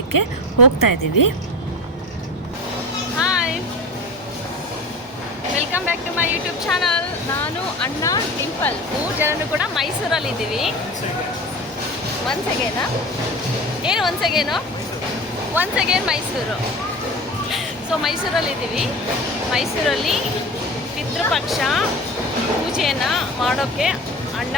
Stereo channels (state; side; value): normal; both; correlation 0.32